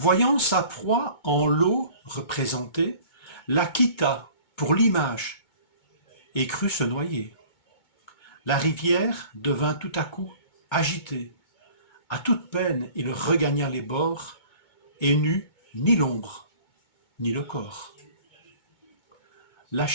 sa proie en l'eau représentée, la quitta pour l'image et crut se noyer. La rivière devint tout à coup agitée. À toute peine, il regagna les bords et n'eut ni l'ombre, ni le corps.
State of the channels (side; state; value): right; late; 2.2 ms